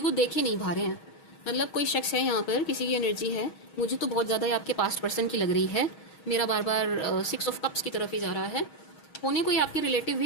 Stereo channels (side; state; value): right; late; 6.3 ms